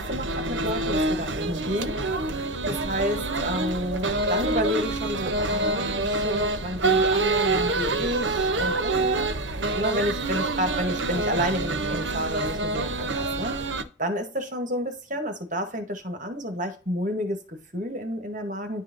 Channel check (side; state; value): both; normal; correlation 0.16